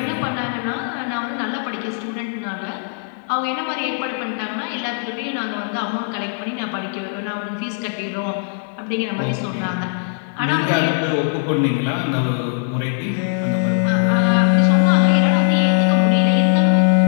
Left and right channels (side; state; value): right; silent; digital silence